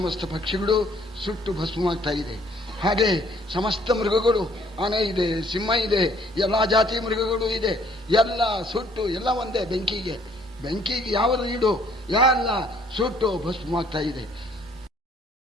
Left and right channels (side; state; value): both; normal; correlation 0.61